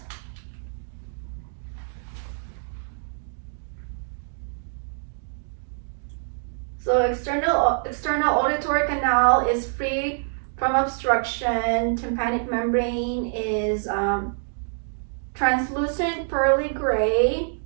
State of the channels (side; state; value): left; silent; digital silence